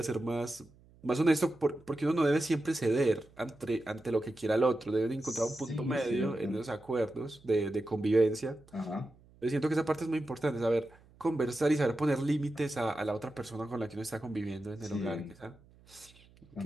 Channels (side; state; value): right; noise; hum, 27 dB below the sound